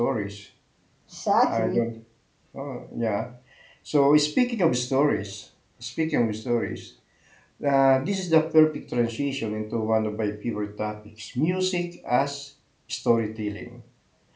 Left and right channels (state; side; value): identical; both; correlation 1.00